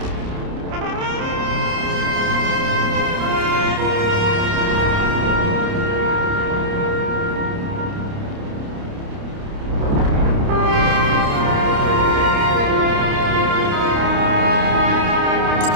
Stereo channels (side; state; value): left; late; 29 ms